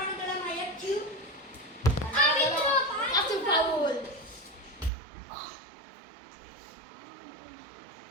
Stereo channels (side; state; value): left; drops out; at 4.9 s